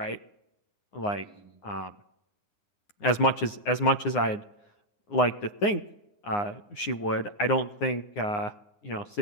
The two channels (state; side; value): late; right; 9.7 ms